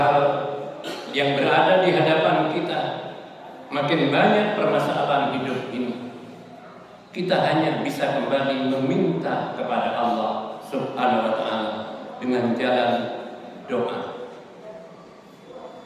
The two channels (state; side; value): identical; both; correlation 1.00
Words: yang berada di hadapan kita, makin banyak permasalahan hidup ini. Kita hanya bisa kembali meminta kepada Allah Subhanahu wa taala dengan jalan doa.